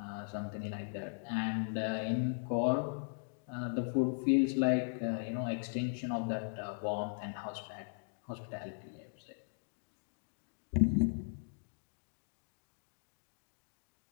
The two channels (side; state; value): right; silent; digital silence